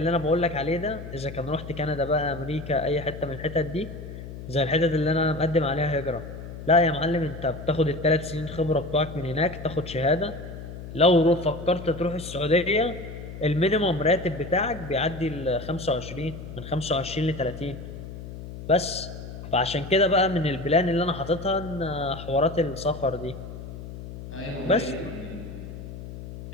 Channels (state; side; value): noise; left; hum, 11 dB below the sound